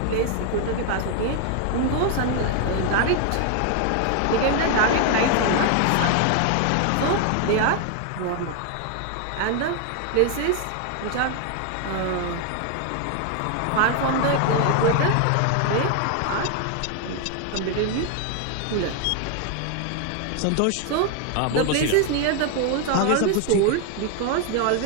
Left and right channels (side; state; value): both; different; correlation 0.00